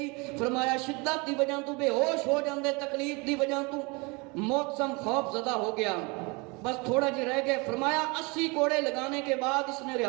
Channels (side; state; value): left; quieter; 28.2 dB